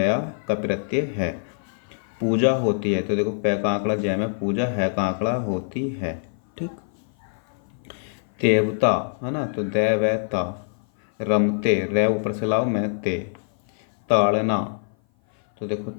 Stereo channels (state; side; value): silent; right; 56 dB below the other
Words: का प्रत्यय है। पूजा होती है तो देखो पै का आंकड़ा जय में पूजा, है का आंकड़ा होती है, ठीक। देवता, है ना। तो दैवता। रमते, रे ऊपर से लाओ मैं ते। ताड़ना, तो देखो